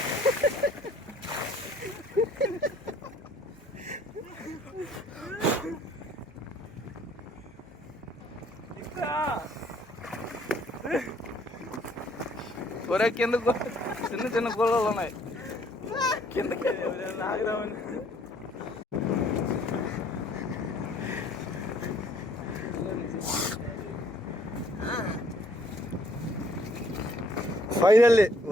ఒరే కిందకు చిన్న చిన్న గోళాలు ఉన్నాయి కిందకి ఆగిరామని. Finally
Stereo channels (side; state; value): both; normal; correlation 0.62